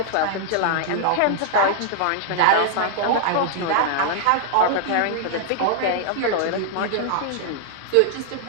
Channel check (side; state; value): both; different; correlation -0.01